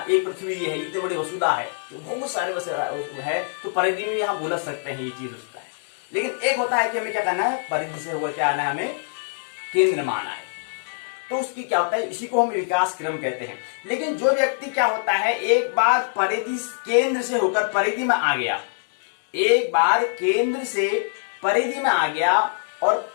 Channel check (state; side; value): silent; right; digital silence